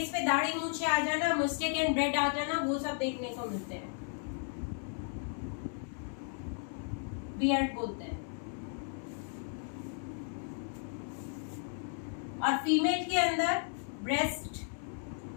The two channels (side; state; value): right; silent; 55 dB below the other